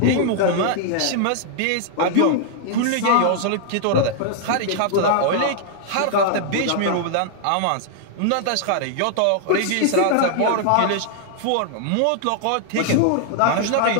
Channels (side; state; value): both; different; correlation -0.01